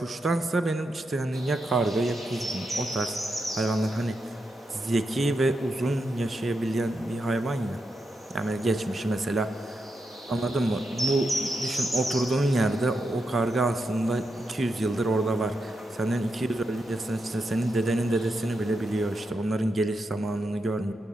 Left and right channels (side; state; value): both; normal; correlation 0.85